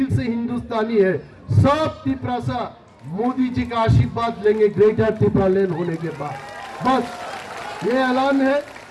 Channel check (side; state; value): both; identical; correlation 1.00